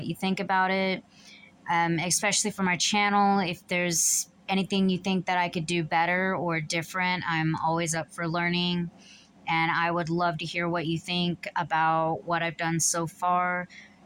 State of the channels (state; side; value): identical; both; correlation 1.00